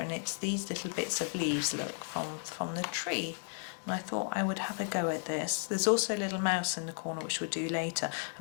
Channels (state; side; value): silent; right; 55 dB below the other